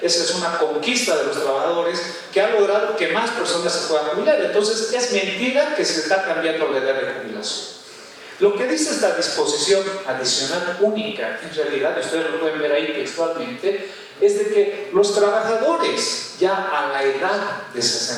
Esa es una conquista de los trabajadores que ha logrado que más personas se puedan jubilar. Entonces es mentira que se está cambiando la edad de jubilación. Lo que dice esta disposición adicional única, en realidad, ustedes lo pueden ver ahí textualmente, es de que los trabajadores ya a la edad de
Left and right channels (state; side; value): identical; both; correlation 1.00